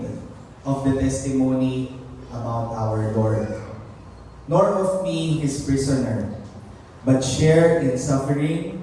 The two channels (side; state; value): both; identical; correlation 1.00